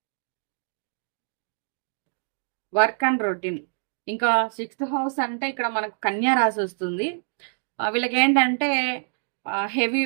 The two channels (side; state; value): left; silent; digital silence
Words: work and routine. ఇంకా 6th హౌస్ అంటే ఇక్కడ మనకు కన్యా రాశి వస్తుంది. వీళ్ళకేంటంటే హెవీ